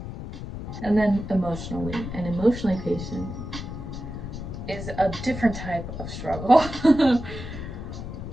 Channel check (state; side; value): noise; left; rumble, 8 dB below the sound